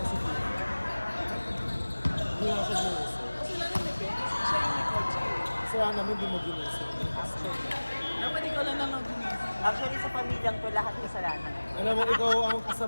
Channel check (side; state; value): both; inverted; correlation -1.00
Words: si Fifi. Hindi na siya ginising. Kasi lalo ni Ben, kasi siya yung may coach eh. Kasi wala naman, hindi mo ginising. Dapat ikaw lang naman gumising. Actually sa pamilyang to lahat kasalanan. Alam mo, ikaw ang